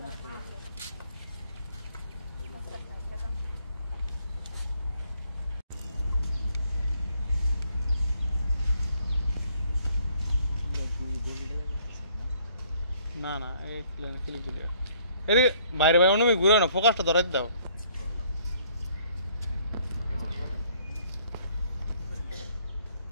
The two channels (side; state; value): both; inverted; correlation -0.63